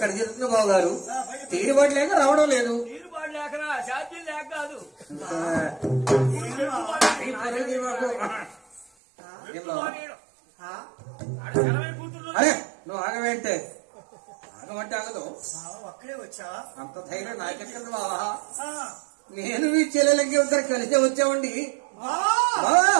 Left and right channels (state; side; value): drops out; left; at 8.8 s